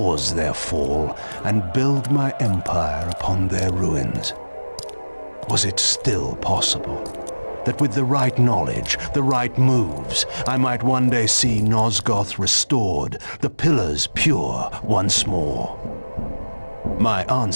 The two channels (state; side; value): inverted; both; correlation -1.00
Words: their fall and build my empire upon their ruins. Was it still possible that with the right knowledge, the right moves, I might one day see Nosgoth restored, the pillars pure once more? My